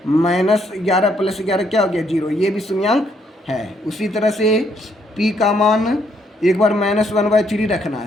-11 +11 क्या हो गया? 0। ये भी शून्यांक है। उसी तरह से p का मान एक बार -1/3 रखना है।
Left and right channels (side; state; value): both; normal; correlation 0.72